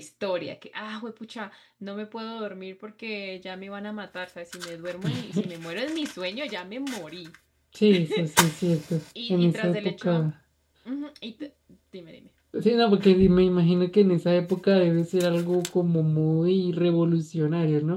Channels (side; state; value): both; identical; correlation 1.00